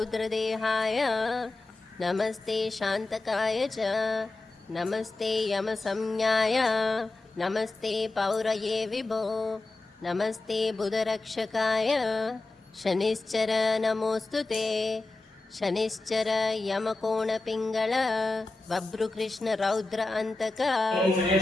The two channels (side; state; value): right; quieter; 3.2 dB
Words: नमस्ते शान्तकाय च नमस्ते यमसंज्ञाय नमस्ते पौरये विभो। नमस्ते बुधरक्षकाय शनिश्चर नमोस्तुते। शनिश्चर यमकोणपिङ्गल बभ्रुकृष्णरौद्रहन्तक